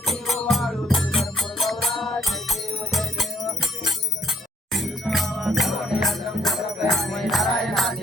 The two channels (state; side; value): normal; both; correlation 0.67